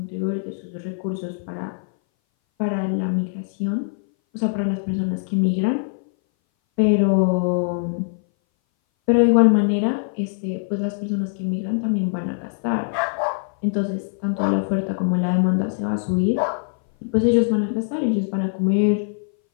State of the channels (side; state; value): right; silent; 60 dB below the other